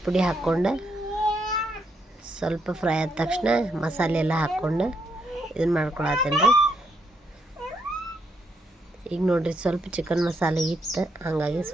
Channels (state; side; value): normal; both; correlation 0.77